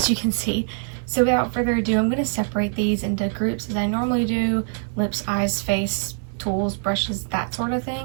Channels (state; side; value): silent; left; digital silence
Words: you can see. So without further ado, I'm going to separate these into groups as I normally do: lips, eyes, face, tools, brushes, that sort of